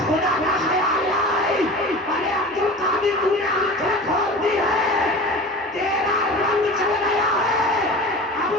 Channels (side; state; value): both; normal; correlation 0.36